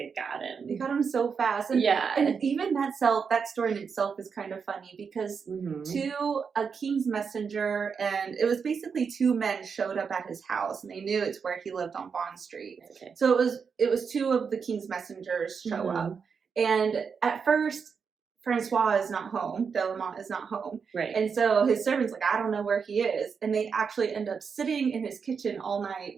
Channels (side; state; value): left; quieter; 6.0 dB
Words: got him. They got him so fast. And, and even that story in itself is kind of funny because a king's messenger, and it was basically 2 men showed up at his house, and they knew it's where he lived on Bond Street. So it was 2 of the king's messengers show up. And at first, Francois is not home. De la Motte is not home. Right. And so his servant's like, I don't know where he is. And they actually end up sitting in his kitchen all night